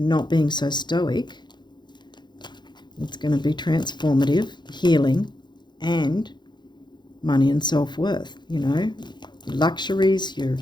not being so stoic. It's going to be transformative, healing, and money and self-worth, you know, your luxuries, your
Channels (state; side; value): late; right; 0.21 ms